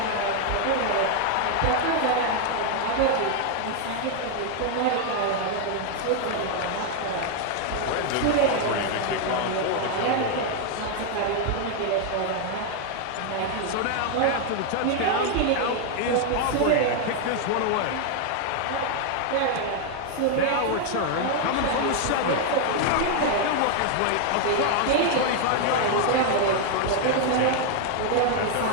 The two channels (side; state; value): both; different; correlation 0.00